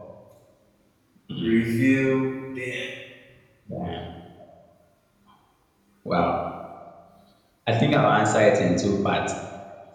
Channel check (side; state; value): both; identical; correlation 1.00